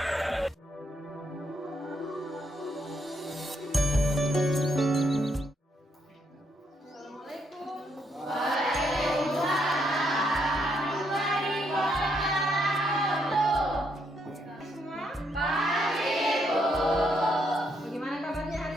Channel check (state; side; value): normal; both; correlation 0.75